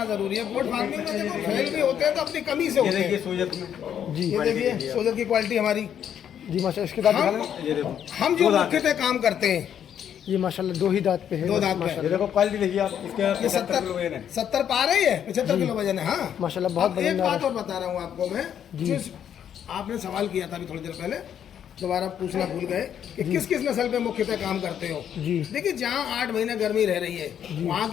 जरूरी है। गोट फार्मिंग में देखो फेल भी होते हैं तो अपनी कमी से ये होते देखिए हैं। सोजत में, जी। ये देखिए सोजत की क्वालिटी हमारी। जी माशाल्लाह। इसके दांत दिखा हम लें। ये देखो, हम जो 2 दांत मुख्यतः काम करते हैं, ये माशाल्लाह 2 ही दांत पे है। 2 दांत पे। ये देखो क्वालिटी देखिए आप, इसके ये 75 किलो वजन है। 70 पार है, ये 75 किलो वजन है। हाँ माशाल्लाह बहुत अब एक वजनदार बात है। और बता रहा हूँ आपको मैं, जिस आपने सवाल किया था अभी थोड़ी देर पहले, दोबारा पूछना भूल गए कि किस किस नस्ल पे मुख्यतः काम करते हो। जी। देखिए, जहाँ 8 महीने गर्मी रह रही है, वहाँ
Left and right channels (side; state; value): right; quieter; 9.2 dB